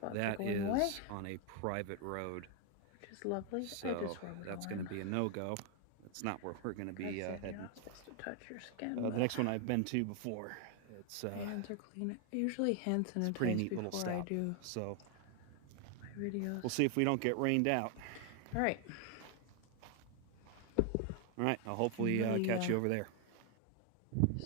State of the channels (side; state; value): both; different; correlation 0.00